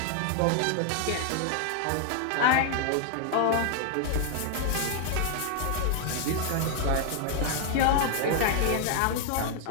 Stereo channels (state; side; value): different; both; correlation 0.00